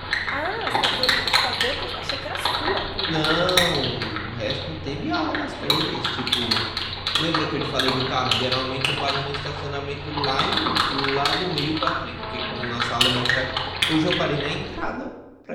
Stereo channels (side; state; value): both; identical; correlation 1.00